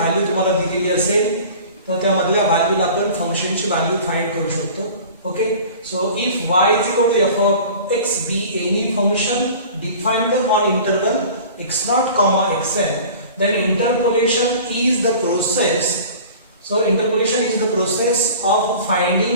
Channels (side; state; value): both; inverted; correlation -0.42